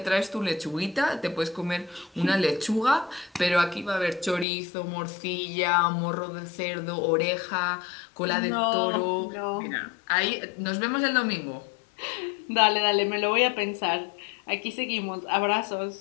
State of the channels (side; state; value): right; drops out; at 4.5 s